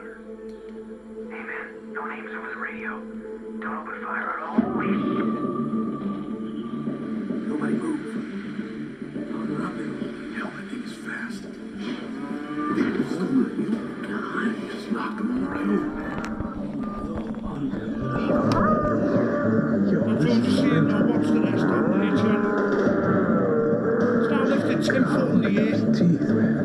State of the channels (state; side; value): identical; both; correlation 1.00